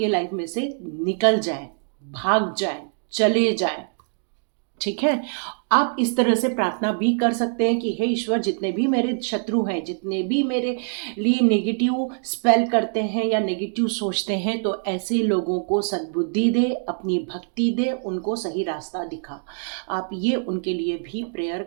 लाइफ में से निकल जाए, भाग जाए, चले जाए। ठीक है। आप इस तरह से प्रार्थना भी कर सकते हैं कि हे ईश्वर, जितने भी मेरे शत्रु हैं, जितने भी मेरे लिए नेगेटिव स्पेल करते हैं या नेगेटिव सोचते हैं, तो ऐसे लोगों को सद्बुद्धि दे, अपनी भक्ति दे, उनको सही रास्ता दिखा। आप ये उनके लिए भी प्रेयर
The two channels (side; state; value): left; silent; 63 dB below the other